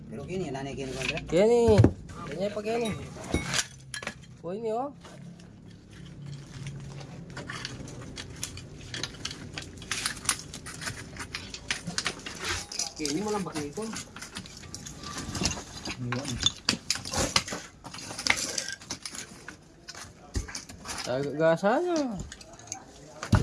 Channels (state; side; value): identical; both; correlation 1.00